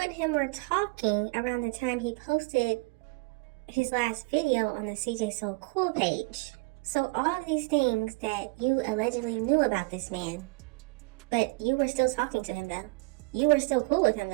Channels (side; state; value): left; quieter; 28.4 dB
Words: him were talking around the time he posted his last video on the CJ So Cool page. So all of these things that you allegedly knew about this man, but you were still talking to him though. You were still cool with him